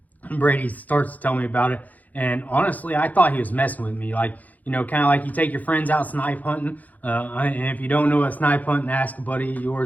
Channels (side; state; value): right; late; 0.079 ms